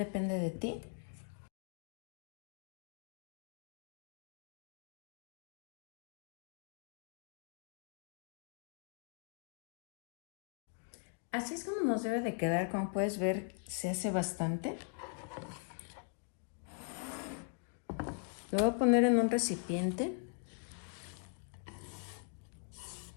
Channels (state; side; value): silent; right; 51 dB below the other